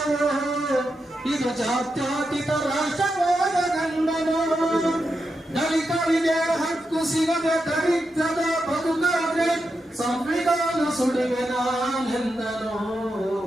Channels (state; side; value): normal; both; correlation 0.87